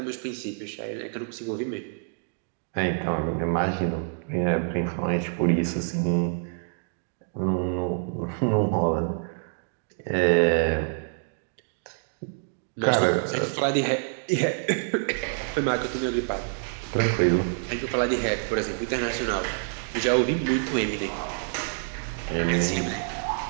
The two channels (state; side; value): silent; left; digital silence